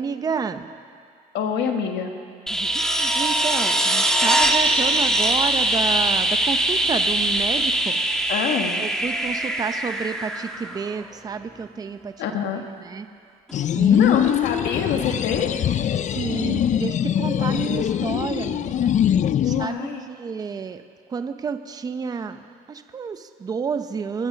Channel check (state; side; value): normal; both; correlation 0.54